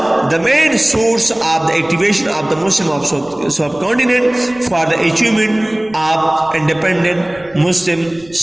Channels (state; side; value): noise; right; rumble, 27 dB below the sound